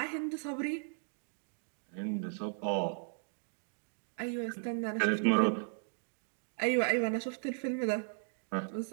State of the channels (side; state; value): left; silent; digital silence